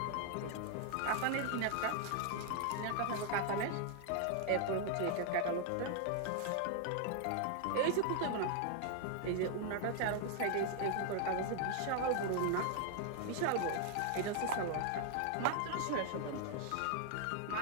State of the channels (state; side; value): different; both; correlation 0.00